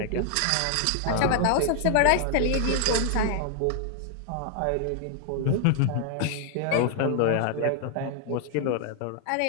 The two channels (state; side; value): different; both; correlation 0.00